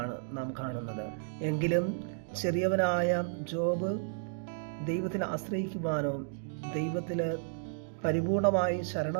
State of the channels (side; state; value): left; silent; digital silence